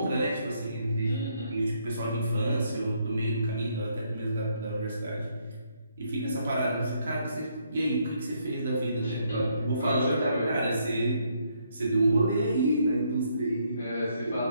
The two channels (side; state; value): both; inverted; correlation -0.72